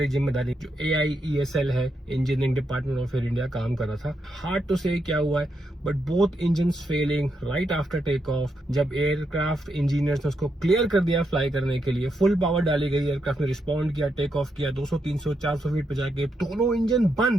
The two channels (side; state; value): both; normal; correlation 0.82